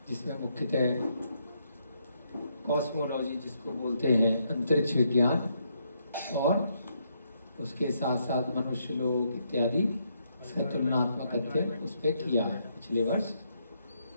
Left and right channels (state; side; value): inverted; both; correlation -0.75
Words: जिसमें मुख्यतः कॉस्मोलॉजी जिसको बोलते हैं, अंतरिक्ष विज्ञान, और उसके साथ साथ मनुष्य लोक इत्यादि, इसका तुलनात्मक अध्ययन उस पर किया है पिछले वर्ष।